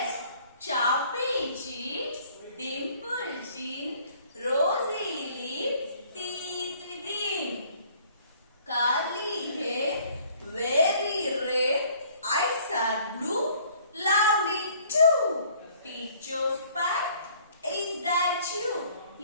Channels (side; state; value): both; inverted; correlation -0.57